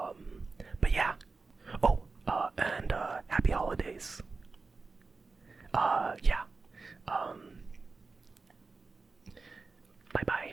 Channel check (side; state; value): left; quieter; 4.1 dB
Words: yeah. Oh, and happy holidays. Yeah.